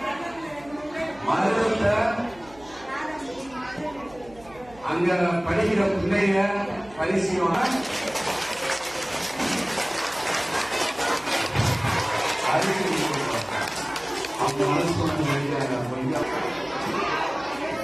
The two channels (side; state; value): right; noise; hum, 23 dB below the sound